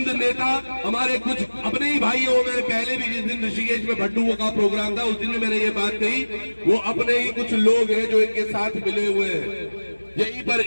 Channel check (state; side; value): inverted; both; correlation -1.00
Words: नेता, हमारे कुछ अपने ही भाई हो, मैंने पहले भी जिस दिन ऋषिकेश में भट्टू का प्रोग्राम था उस दिन भी मैंने ये बात कही, वो अपने ही कुछ लोग हैं जो इनके साथ मिले हुए हैं। यहीं पर